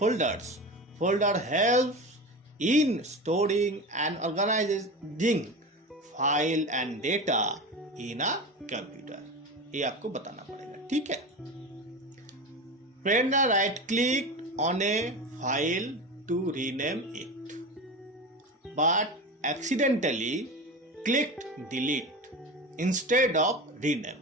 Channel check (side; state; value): both; normal; correlation 0.27